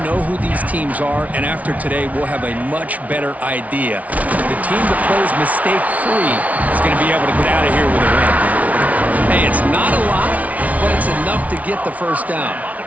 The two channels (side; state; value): left; late; 0.070 ms